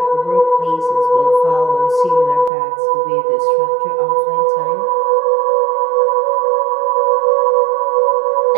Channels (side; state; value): left; drops out; at 2.5 s